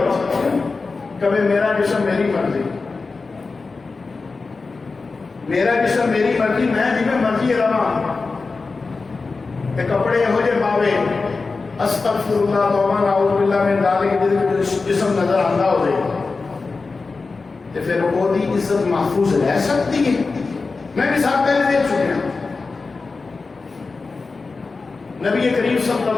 کبھی میرا جسم میری مرضی میرا جسم میری مرضی میں جی میں مرضی رہا تے کپڑے یہو جے پاوے استغفر اللہ توبہ نعوذ باللہ من ذالک جسم نظر آندا ہوے تے پھر وہ دی عزت محفوظ رہ سکتی ہے میں مثال پہلے دیکھ چکے ہیں نبی کریم صلی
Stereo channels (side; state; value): right; quieter; 4.1 dB